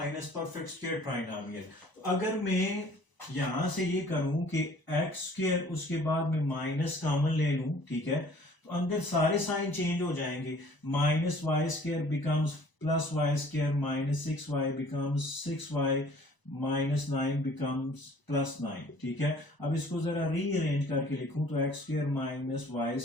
perfect square trinomial. अगर मैं यहां से ये करूं कि x² उसके बाद में माइनस कॉमन ले लूं, ठीक है, तो अंदर सारे साइन चेंज हो जाएंगे। Minus y² becomes plus y² minus 6y becomes 6y minus 9 becomes plus 9, ठीक है। अब इसको जरा रीअरेंज करके लिखूं तो x² minus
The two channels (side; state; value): right; late; 1.0 ms